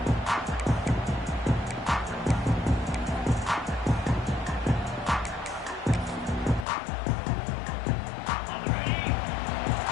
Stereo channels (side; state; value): right; drops out; at 6.7 s